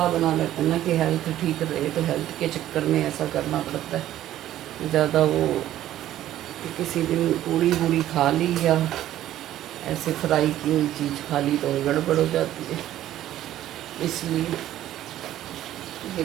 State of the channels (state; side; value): quieter; left; 13.0 dB